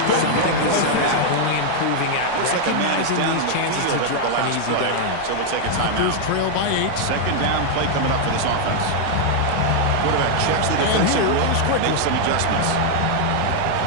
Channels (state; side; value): different; both; correlation 0.00